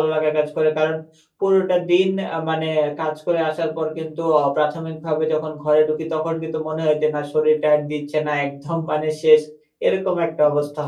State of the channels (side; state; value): both; identical; correlation 1.00